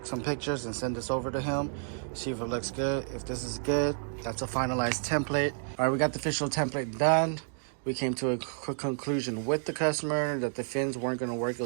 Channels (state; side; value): silent; left; digital silence